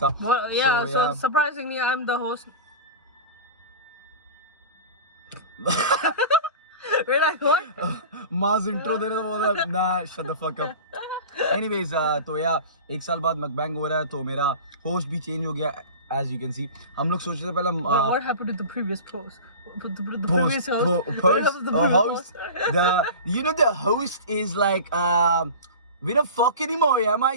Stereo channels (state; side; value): inverted; both; correlation -0.32